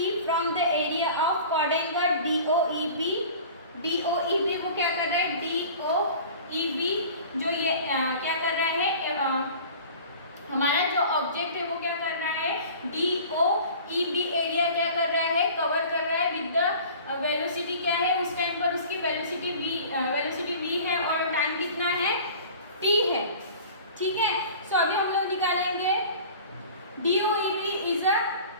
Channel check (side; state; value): both; inverted; correlation -0.42